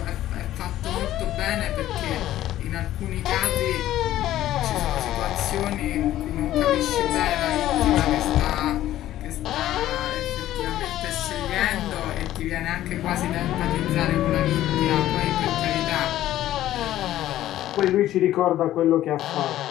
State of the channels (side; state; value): right; quieter; 13.5 dB